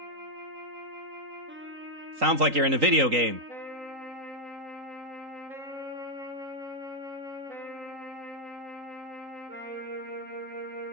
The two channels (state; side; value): late; left; 3.8 ms